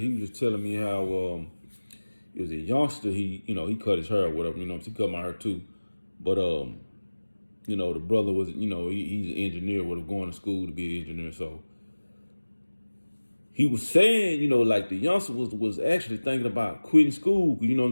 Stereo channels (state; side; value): inverted; both; correlation -1.00